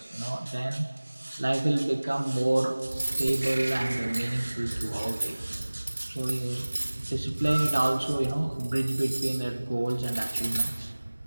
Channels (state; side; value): inverted; both; correlation -1.00